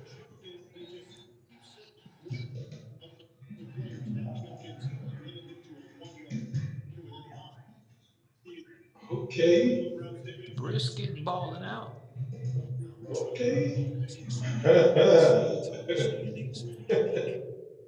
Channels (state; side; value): identical; both; correlation 1.00